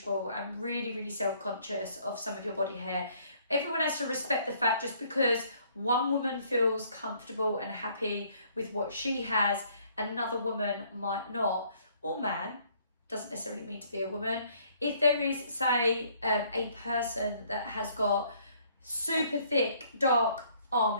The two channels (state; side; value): inverted; both; correlation -0.63